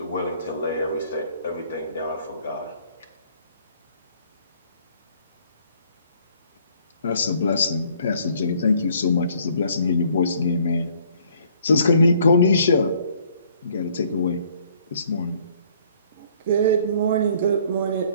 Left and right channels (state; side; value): inverted; both; correlation -0.60